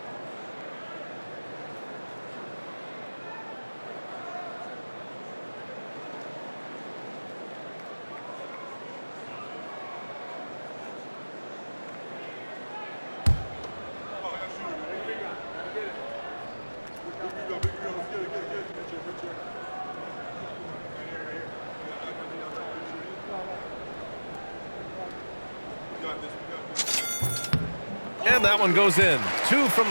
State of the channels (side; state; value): both; inverted; correlation -1.00